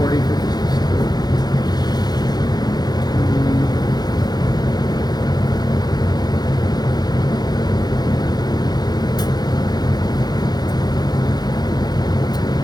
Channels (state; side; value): late; right; 0.19 ms